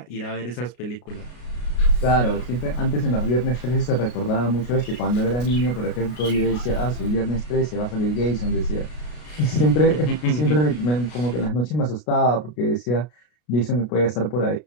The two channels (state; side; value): late; right; 33 ms